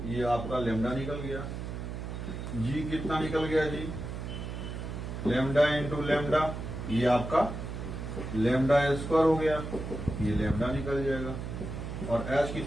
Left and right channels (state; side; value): noise; right; hum, 6 dB below the sound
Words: ये आपका लेमडा निकल गया। जी कितना निकल गया जी, लेमडा इंटू लेमडा, ये आपका लेमडा स्क्वायर हो गया, ये लेमडा निकल जाएगा। और एच